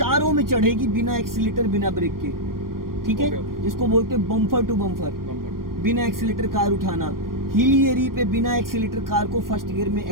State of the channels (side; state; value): left; late; 0.91 ms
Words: में चढ़ेगी, बिना एक्सीलेटर बिना ब्रेक के। ठीक है, जिसको बोलते हैं बम्पर टू बम्पर। बिना एक्सीलेटर कार उठाना, हिली एरिया पे बिना एक्सीलेटर कार को फर्स्ट गियर में